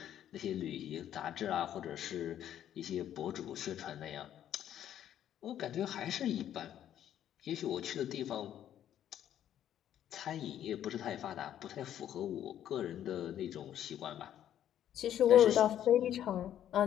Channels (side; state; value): right; quieter; 10.8 dB